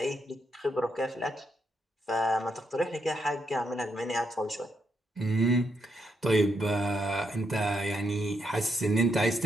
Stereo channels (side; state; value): both; normal; correlation 0.79